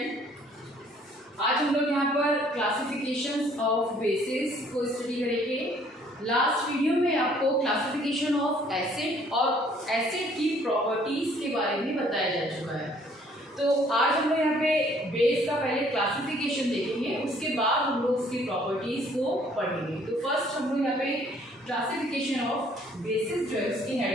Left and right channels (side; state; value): both; normal; correlation 0.60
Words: आज हम लोग यहाँ पर क्लासिफिकेशंस ऑफ बेसिस को स्टडी करेंगे। लास्ट वीडियो में आपको क्लासिफिकेशन ऑफ एसिड और एसिड की प्रॉपर्टीज के बारे में बताया जा चुका है। तो आज हम लोग यहाँ पे बेस का पहले क्लासिफिकेशन देखेंगे, उसके बाद हम लोग उसकी प्रॉपर्टीज को पढ़ेंगे। तो फर्स्ट हम लोग यहाँ पे क्लासिफिकेशन ऑफ बेसिस जो है उसकी